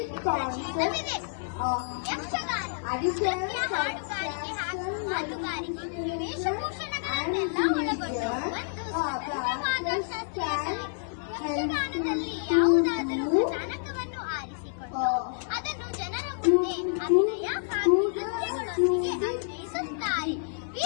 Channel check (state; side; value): silent; right; 59 dB below the other